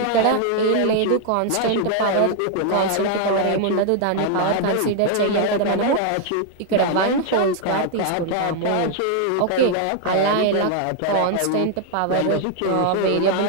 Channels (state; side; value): different; both; correlation 0.00